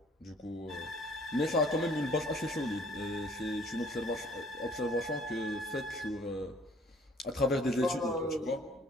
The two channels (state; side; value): normal; both; correlation 0.57